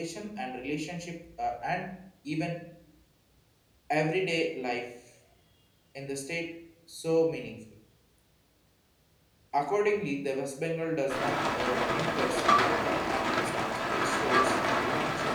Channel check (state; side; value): identical; both; correlation 1.00